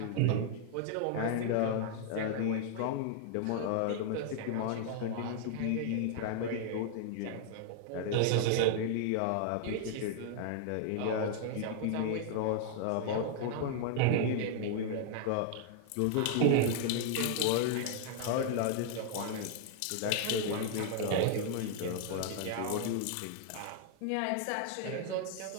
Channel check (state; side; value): different; both; correlation 0.00